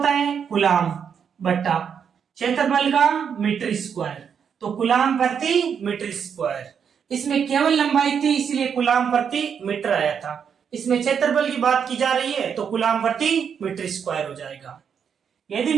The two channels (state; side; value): quieter; left; 7.3 dB